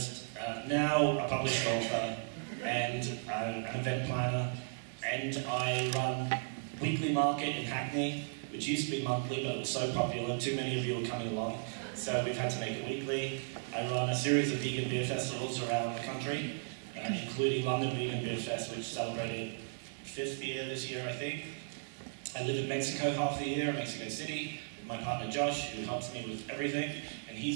now a published author, and an event planner. And I run Weekly Market in Hackney, which used to be monthly, but it was so popular, too many of you were coming along, so we've had to make it weekly. I run a series of vegan beer festivals around the country, including London Vegan Beer Fest, which celebrated 5th year this year, I think. I live in Mexico half the year, in Mexico City, with my partner Josh, who helps me with everything, and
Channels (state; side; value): silent; left; digital silence